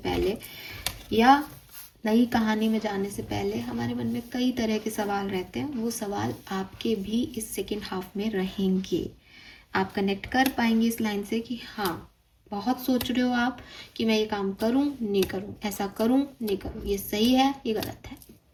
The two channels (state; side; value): identical; both; correlation 1.00